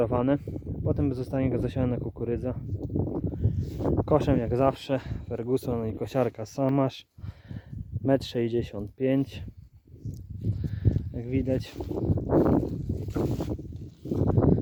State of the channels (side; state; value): both; identical; correlation 1.00